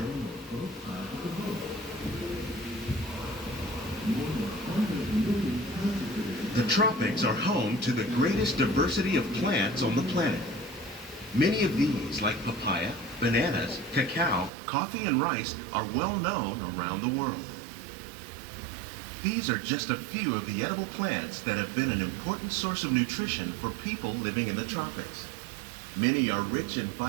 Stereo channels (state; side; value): drops out; left; at 14.5 s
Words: The tropics are home to the greatest diversity of plants on the planet. Many of these, like papaya, bananas, cacao, coffee, and rice, are well known around the world. These are just a few of the edible plants that have been an important source of nutrition for people living in the tropics. Many are rich in